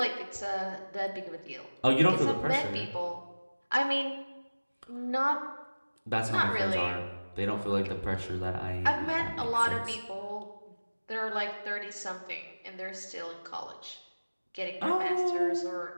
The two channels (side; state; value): both; inverted; correlation -1.00